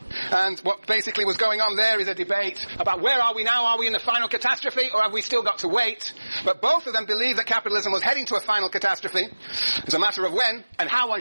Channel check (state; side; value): inverted; both; correlation -1.00